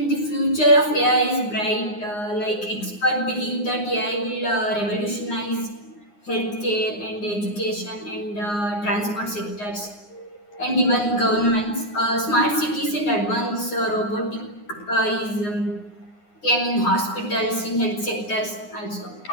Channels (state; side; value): late; right; 9.7 ms